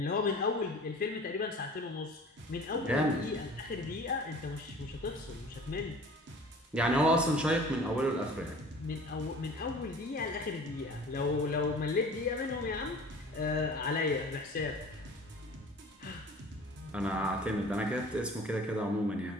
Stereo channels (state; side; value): normal; both; correlation 0.45